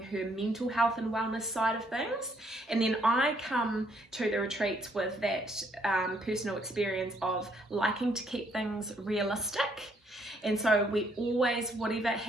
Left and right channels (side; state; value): both; normal; correlation 0.69